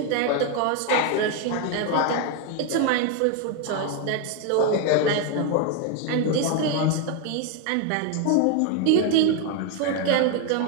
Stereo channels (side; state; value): both; different; correlation 0.01